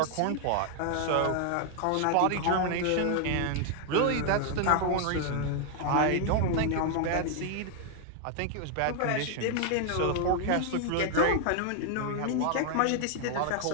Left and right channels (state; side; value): different; both; correlation 0.00